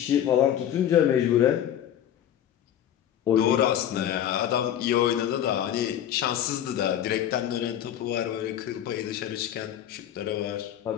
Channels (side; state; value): right; quieter; 10.6 dB